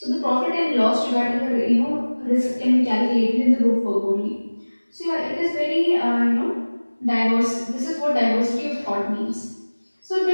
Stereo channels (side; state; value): both; inverted; correlation -1.00